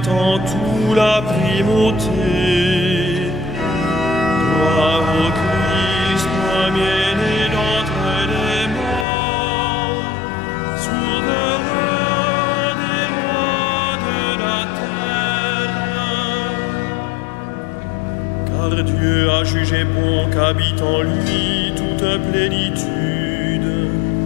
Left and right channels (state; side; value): drops out; right; at 9.1 s